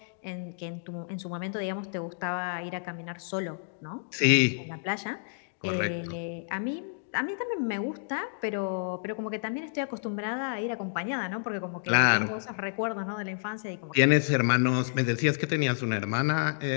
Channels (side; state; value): right; silent; digital silence